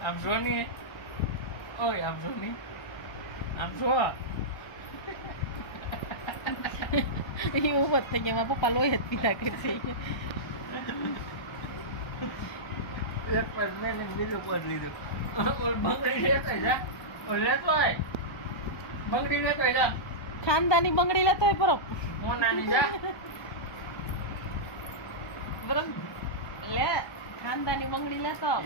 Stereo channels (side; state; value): right; late; 1.2 ms